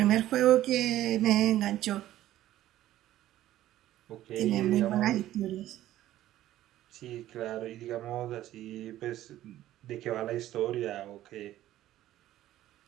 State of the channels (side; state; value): left; quieter; 13.8 dB